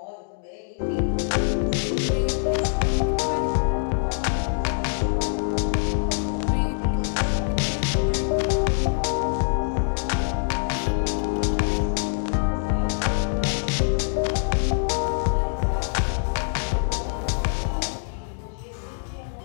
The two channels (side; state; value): right; silent; digital silence